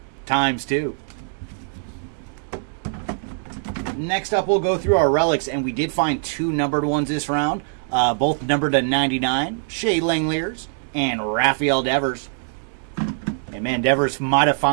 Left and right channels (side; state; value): left; silent; digital silence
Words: ×2. Next up, we'll go through our relics, and we did find 2 numbered ones this round, both numbered to 99, Shea Langeliers and Rafael Devers. And man, Devers might have